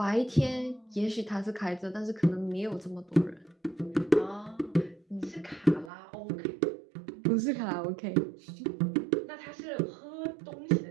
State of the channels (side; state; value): left; drops out; at 5.9 s